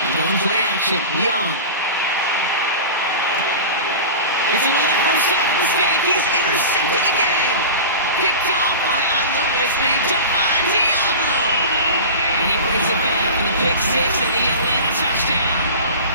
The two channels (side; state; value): both; inverted; correlation -0.32